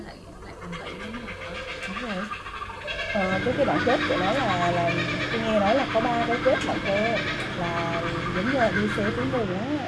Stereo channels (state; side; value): identical; both; correlation 1.00